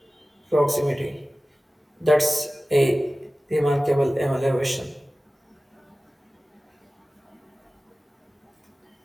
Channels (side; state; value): both; normal; correlation 0.96